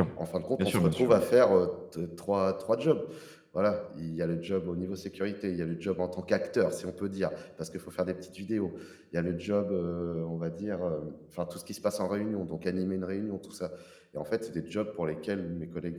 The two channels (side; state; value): both; identical; correlation 1.00